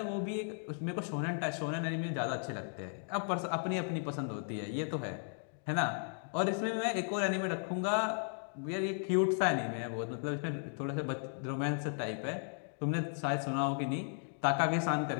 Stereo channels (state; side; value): silent; right; 54 dB below the other